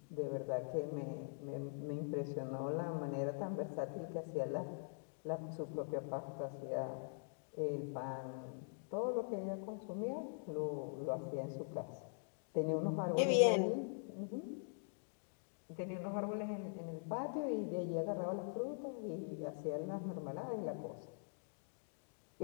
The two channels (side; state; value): right; silent; digital silence